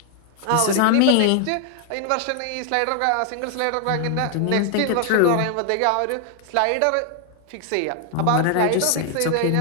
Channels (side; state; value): both; different; correlation 0.00